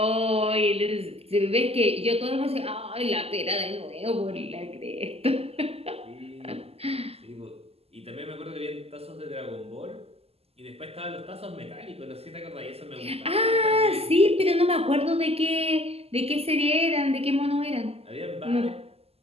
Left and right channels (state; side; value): late; left; 0.29 ms